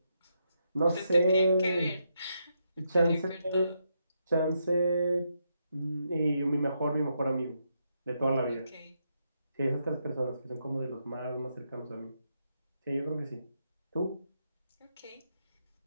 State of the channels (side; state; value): both; inverted; correlation -0.81